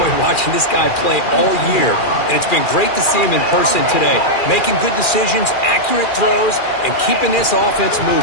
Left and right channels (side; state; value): right; late; 2.4 ms